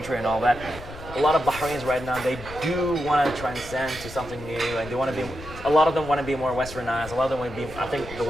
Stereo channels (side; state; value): left; noise; rumble, 14 dB below the sound